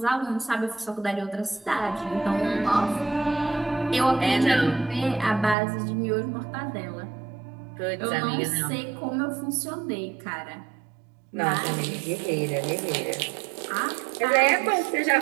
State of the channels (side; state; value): left; drops out; at 5.6 s